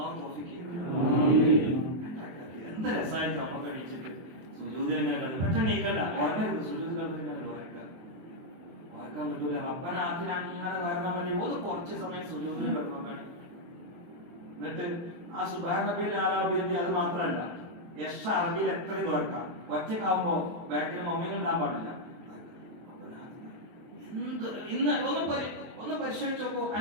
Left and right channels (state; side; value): late; left; 23 ms